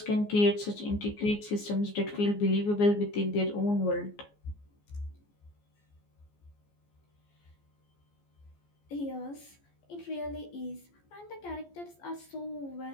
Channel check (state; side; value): late; right; 14 ms